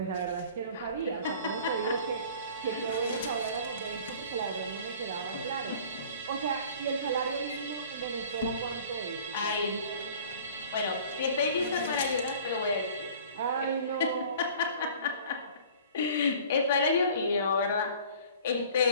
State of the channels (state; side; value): inverted; both; correlation -0.47